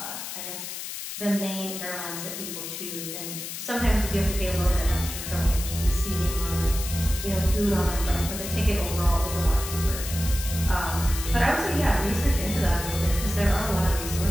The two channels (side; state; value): left; noise; hiss, 7 dB below the sound